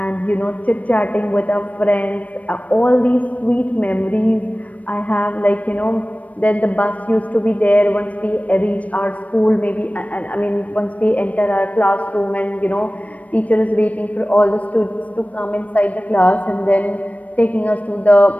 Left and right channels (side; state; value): right; late; 0.069 ms